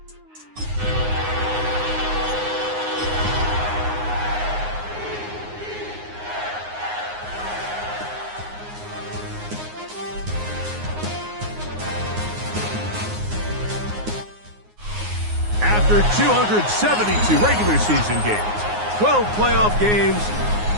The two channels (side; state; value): left; late; 9.6 ms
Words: After 272 regular season games, 12 playoff games,